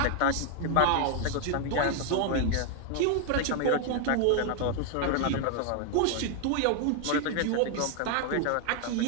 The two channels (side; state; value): both; different; correlation 0.00